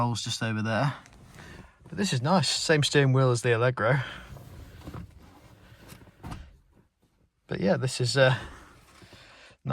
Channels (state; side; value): identical; both; correlation 1.00